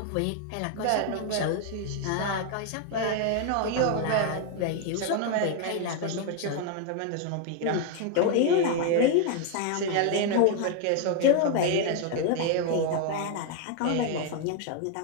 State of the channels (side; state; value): both; different; correlation 0.01